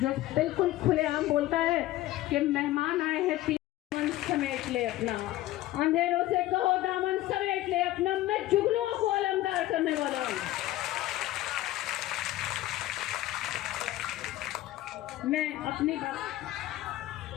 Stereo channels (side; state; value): right; quieter; 15.7 dB